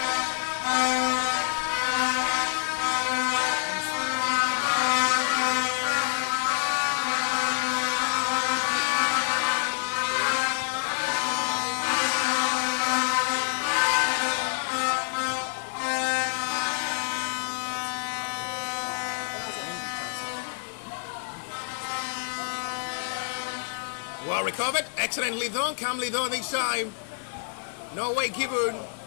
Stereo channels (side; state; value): right; silent; digital silence